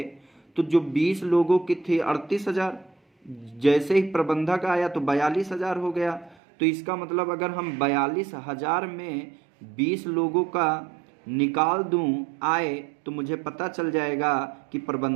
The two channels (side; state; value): left; drops out; at 6.4 s